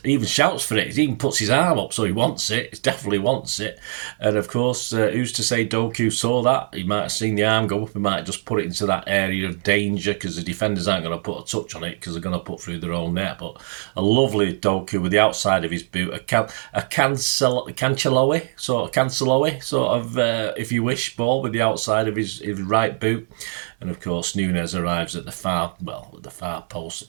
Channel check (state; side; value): silent; left; digital silence